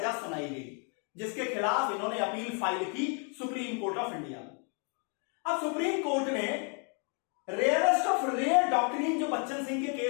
सुनाई गई, जिसके खिलाफ इन्होंने अपील फाइल की सुप्रीम कोर्ट ऑफ इंडिया में। अब सुप्रीम कोर्ट ने रेयरेस्ट ऑफ रेयर डॉक्ट्रिन जो बच्चन सिंह के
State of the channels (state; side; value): quieter; right; 39.4 dB